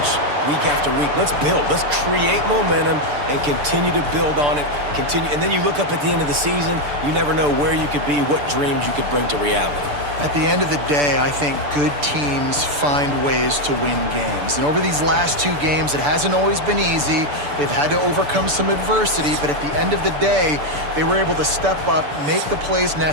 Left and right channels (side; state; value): left; late; 6.8 ms